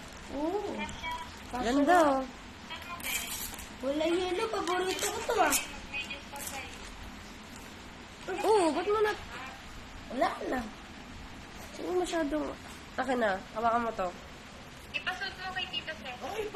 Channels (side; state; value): both; identical; correlation 1.00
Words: Oo. Ganda, oh. Wala yelo. Paborito ko to ah. Oo, ba't mo na... Wala na. Sino masyadong... Akin na, hawakan mo to. Ay,